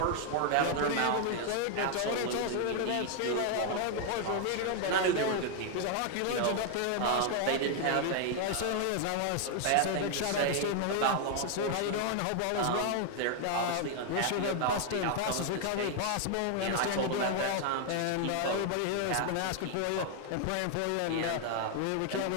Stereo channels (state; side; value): different; both; correlation 0.00